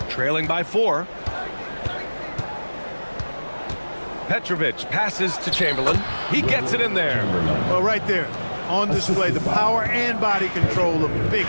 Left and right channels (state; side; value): inverted; both; correlation -1.00